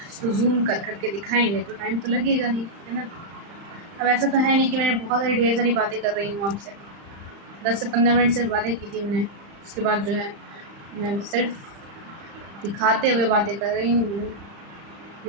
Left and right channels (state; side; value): late; left; 35 ms